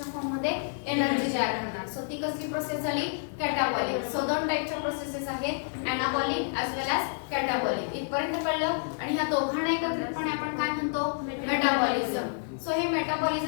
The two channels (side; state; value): right; silent; 59 dB below the other